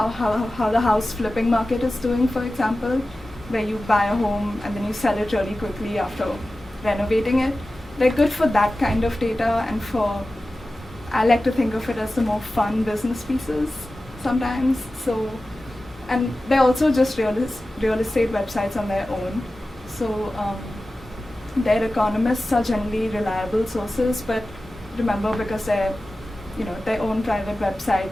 the house flipping market is doing, for example, where you buy a home and then you sell it really quickly after renovating it. They're good for that kind of data, and I like to think of it as the more fun business pieces sometimes. So, and they're also just real estate websites on their own. So their economists are generally reliable sources, but remember, because they're their own private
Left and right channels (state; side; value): normal; both; correlation 0.95